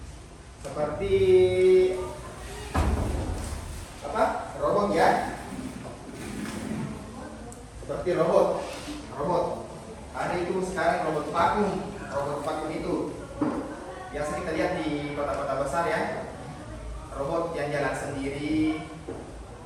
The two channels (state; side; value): identical; both; correlation 1.00